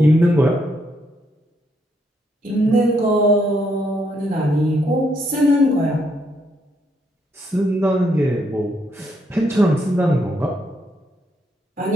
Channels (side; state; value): both; normal; correlation 0.75